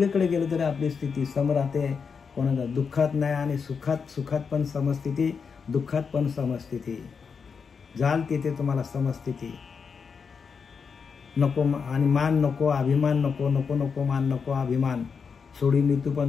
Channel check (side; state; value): right; quieter; 5.8 dB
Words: गेलं तरी आपली स्थिती सम राहते. कोणाला दुःखात नाही आणि सुखात पण समस्थिती, दुःखात पण समस्थिती. जाल तिथे तुम्हाला समस्थिती. नको आणि मान नको, अभिमान नको, नको नको मान नको अभिमान. सोडी मृत्यू